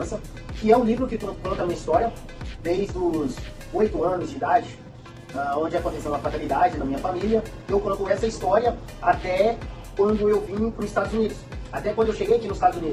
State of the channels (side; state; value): both; identical; correlation 1.00